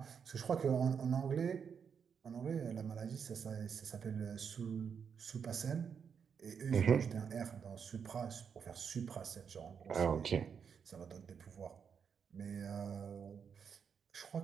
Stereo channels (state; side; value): quieter; left; 6.9 dB